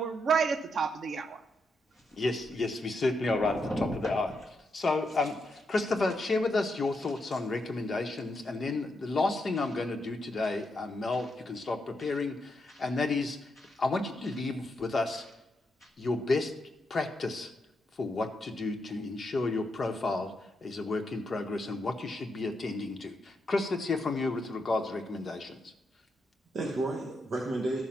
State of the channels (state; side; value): normal; both; correlation 0.82